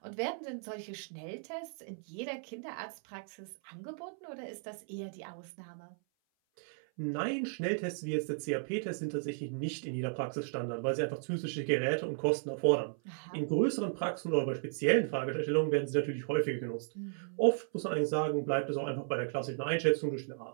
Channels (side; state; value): left; silent; 54 dB below the other